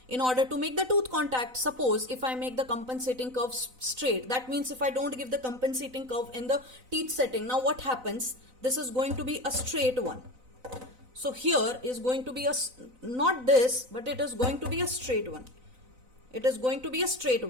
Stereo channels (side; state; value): left; late; 4.0 ms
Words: In order to make the tooth contact, suppose if I make the compensating curve straight, that means if I don't give the compensating curve in the teeth setting, now what happens? This is going to be a straight one. So here is going to be not this, but it is going to be a straight one. It is going to be a straight